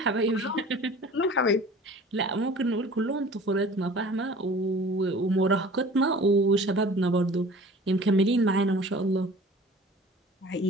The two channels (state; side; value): normal; both; correlation 0.45